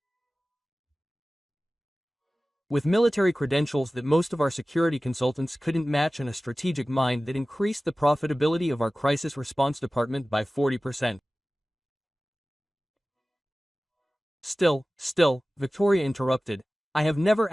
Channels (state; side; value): normal; both; correlation 0.97